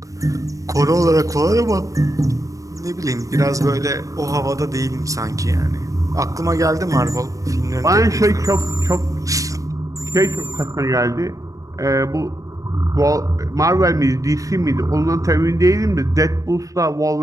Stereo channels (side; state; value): left; late; 0.16 ms